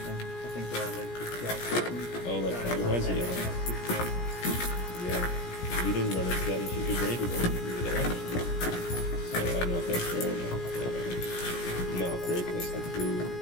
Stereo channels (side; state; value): right; late; 17 ms